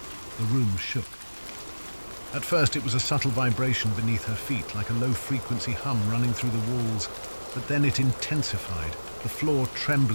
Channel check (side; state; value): both; inverted; correlation -1.00